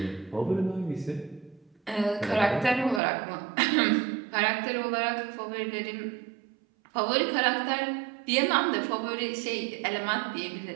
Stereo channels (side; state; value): left; drops out; at 3.0 s